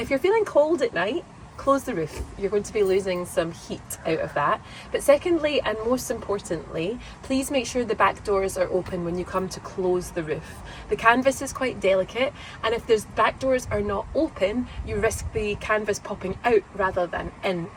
you're feeling cold at night, close the roof. You're going to be losing some heat out of that. But secondly, and most importantly, please make sure the back doors are open when you come to close the roof. The canvas is quite delicate, and if those back doors are not open, you risk the canvas popping out rather than in,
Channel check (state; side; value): identical; both; correlation 1.00